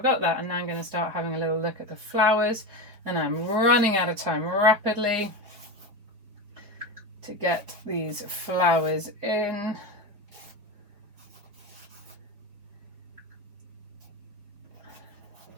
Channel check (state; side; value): late; left; 4.8 ms